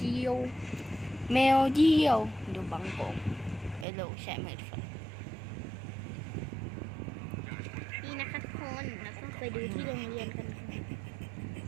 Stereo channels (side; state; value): left; drops out; at 3.9 s